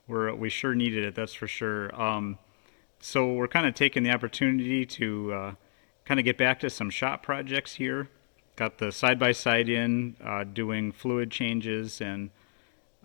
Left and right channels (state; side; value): silent; right; digital silence